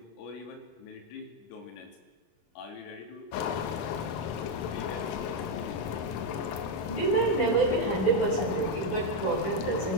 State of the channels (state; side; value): late; right; 25 ms